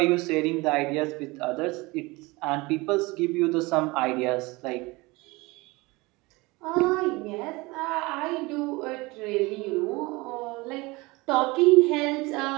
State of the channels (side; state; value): left; quieter; 23.4 dB